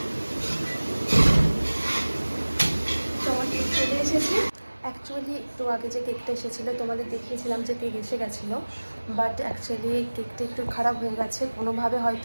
তোমার কেক চলে এসেছে। অ্যাকচুয়ালি একটু আগে যে কেকটা এসেছিলো তোমাদের দেখিয়েছিলাম যে কেক এসে গেছিলো, বাট অ্যাকচুয়ালি কেকটা একটু খারাপ হয়ে গেছে। কোনোভাবে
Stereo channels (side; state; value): both; inverted; correlation -1.00